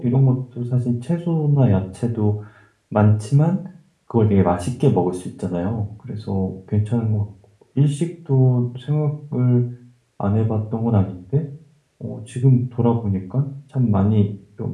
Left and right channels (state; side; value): identical; both; correlation 1.00